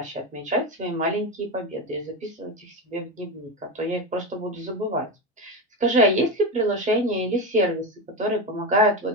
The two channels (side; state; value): both; normal; correlation 0.16